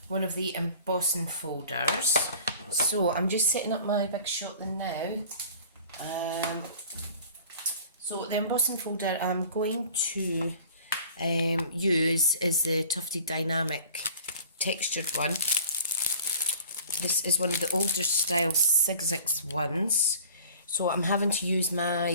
one of the embossing folders. So I'm just setting up my big shot now. So the embossing folder I'm going to use is the Tufted Dynamic textured one. This is one of the older style 6x ones. So I'm having to use my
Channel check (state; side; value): inverted; both; correlation -0.46